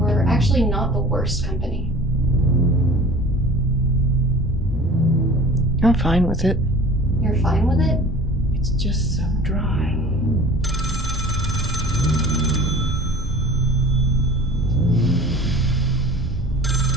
actually not the worst company. I'm fine with it. You're fine with it? It's just so dry.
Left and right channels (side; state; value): both; normal; correlation 0.43